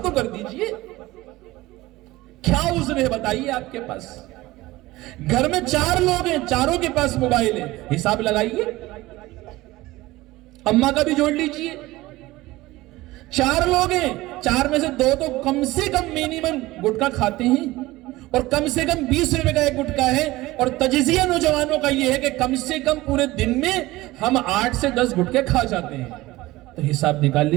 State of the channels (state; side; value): quieter; left; 18.7 dB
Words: کر دیجئے۔ کیا عذر ہے بتائیے آپ کے پاس؟ گھر میں 4 لوگ ہیں، چاروں کے پاس موبائل ہے، حساب لگائیے، اماں کا بھی جوڑ لیجئے۔ 4 لوگ ہیں، 4 میں سے 2 تو کم سے کم مینیمم گٹکا کھاتے ہیں، اور کم سے کم 20 روپے کا ایک گٹکا ہے، اور تجزیہ نوجوانوں کا یہ ہے کہ کم سے کم پورے دن میں ہم 8 سے 10 گٹکے کھا جاتے ہیں۔ تو حساب نکال